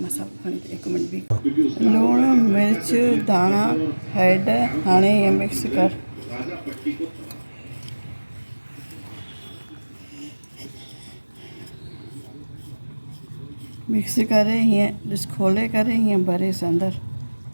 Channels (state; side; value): inverted; both; correlation -1.00